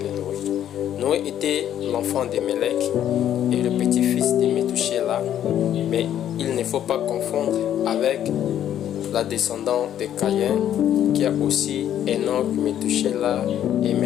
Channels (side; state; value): right; quieter; 10.7 dB